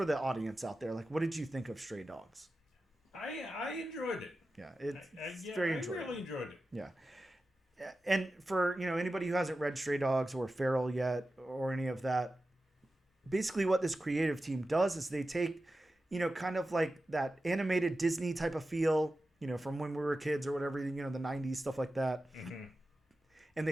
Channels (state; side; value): normal; both; correlation 0.93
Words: the audience out there, like, what did you think of Stray Dogs? I enjoyed it. Yeah, it's very enjoyable. I really enjoyed it. Yeah. And for, anybody who hasn't read Stray Dogs or Feral yet or any of that, basically what this creative team does is they take, kind of like that animated Disney type of feel, from when we were kids or whatever, the 90s, stuff like that. Mm-hmm. And